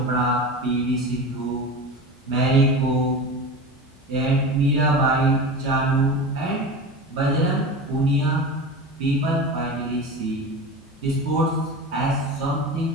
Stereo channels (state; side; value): normal; both; correlation 0.29